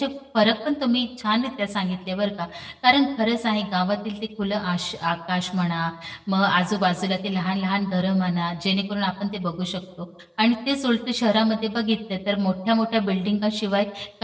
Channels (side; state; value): both; identical; correlation 1.00